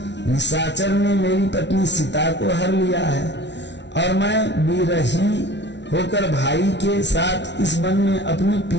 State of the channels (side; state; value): right; late; 0.51 ms